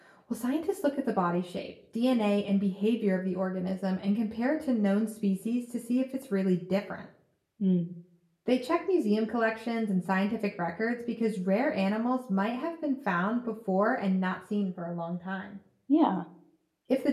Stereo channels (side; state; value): both; identical; correlation 1.00